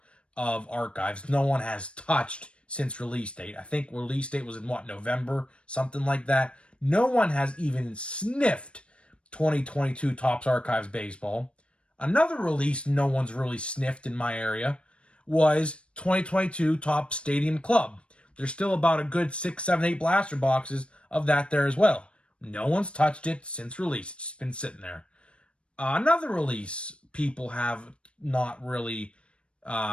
of Archives. No one has touched since release date. I think release date was in November, something like that. No one has even sniffed 2022 Topps Archives Baseball. Another release no one's really sniffed in my area was 2022 Topps Stadium Club. There's still about a good 6, 7, 8 blaster boxes of that there as well. No one's touched it since release. It's been sitting there. Another release people have not really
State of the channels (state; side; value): late; right; 0.059 ms